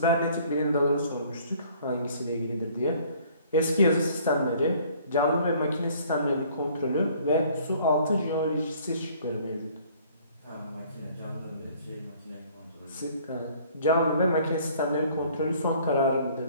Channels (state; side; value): inverted; both; correlation -0.56